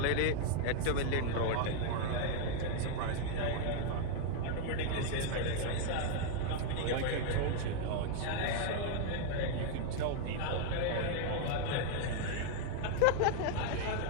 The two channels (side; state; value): both; different; correlation 0.00